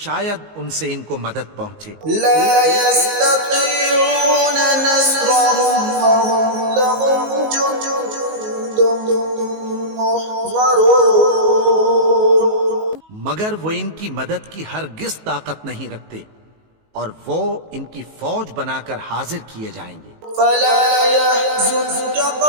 ان سے ان کو مدد پہنچے۔ لا يستطيعون نصرهم وهم لهم جند محضرون. مگر وہ ان کی مدد کی ہرگز طاقت نہیں رکھتے اور وہ ان کی فوج بنا کر حاضر کیے جائیں گے۔ فلا يحزنك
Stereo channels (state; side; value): late; left; 19 ms